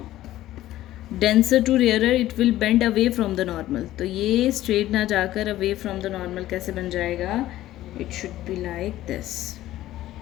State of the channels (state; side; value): quieter; right; 14.6 dB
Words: denser to rarer, it will bend away from the normal. तो ये स्ट्रेट ना जाकर अवे फ्रॉम द नॉर्मल कैसे बन जाएगा, it should be like this.